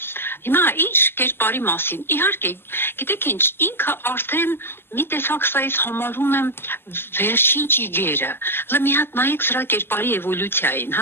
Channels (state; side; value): late; right; 0.11 ms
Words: Հիմա ինչ կերպարի մասին։ Իհարկե, գիտեք ինչ, ինքը արդեն մի տեսակ սա ես համարում եմ վերջին ճիգերը։ Հələ մի հատ նայեք սրա կերպարի էվոլյուցիային,